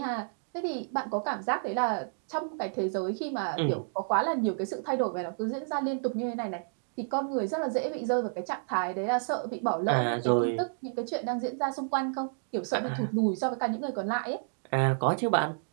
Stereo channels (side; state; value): left; silent; digital silence